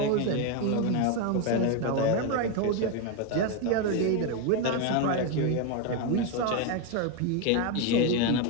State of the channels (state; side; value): different; both; correlation 0.02